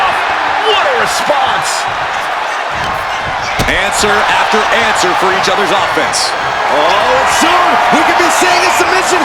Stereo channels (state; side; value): identical; both; correlation 1.00